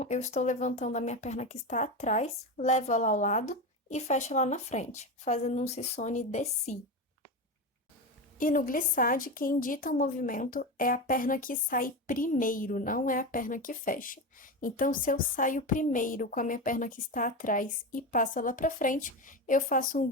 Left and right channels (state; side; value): normal; both; correlation 0.19